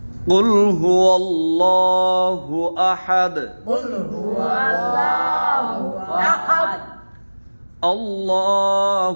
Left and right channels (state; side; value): inverted; both; correlation -1.00